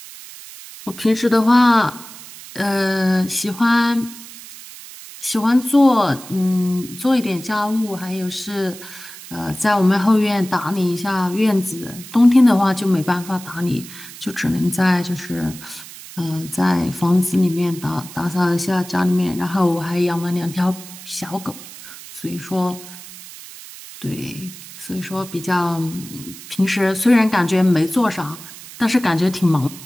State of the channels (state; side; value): noise; right; hiss, 16 dB below the sound